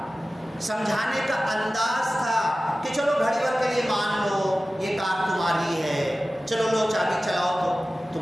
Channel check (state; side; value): normal; both; correlation 0.96